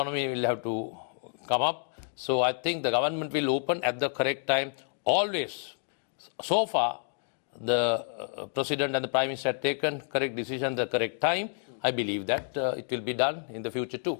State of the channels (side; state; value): right; silent; 58 dB below the other